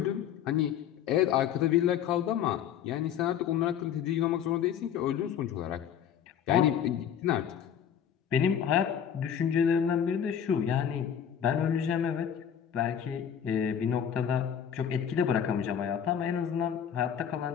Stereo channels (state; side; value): quieter; right; 8.8 dB